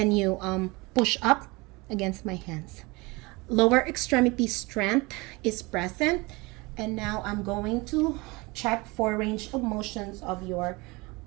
you push up against my hands? Lower extremity strength is present. And now I'm going to check for range of motions of your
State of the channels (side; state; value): left; quieter; 24.6 dB